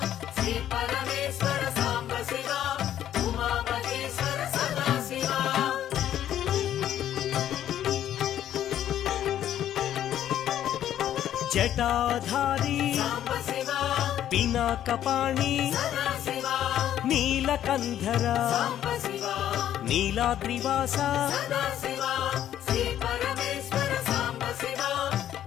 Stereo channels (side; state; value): right; quieter; 11.2 dB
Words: శ్రీ పరమేశ్వర సాంబ శివ ఉమామహేశ్వర సదాశివ జటాధారి సాంబ శివ పినాకపాణి సదాశివ నీలకంధర సాంబ శివ నీలాద్రివాస సదాశివ శ్రీ పరమేశ్వర సాంబ శివ